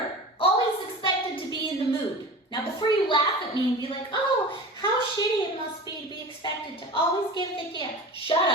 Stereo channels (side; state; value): both; normal; correlation 0.34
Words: always expected to be in the mood. Now, before you laugh at me and be like, oh, how shitty it must be to be expected to always give the gift. Shut